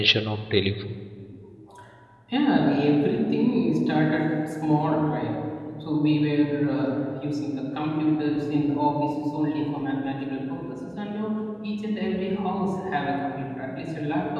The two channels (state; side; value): identical; both; correlation 1.00